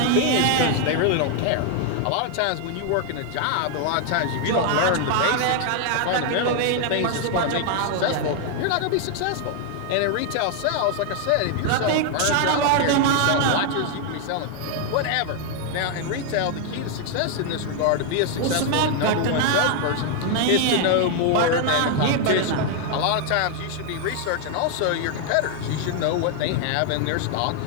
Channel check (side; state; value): both; different; correlation 0.00